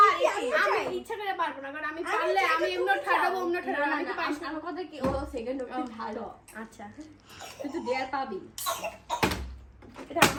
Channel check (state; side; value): identical; both; correlation 1.00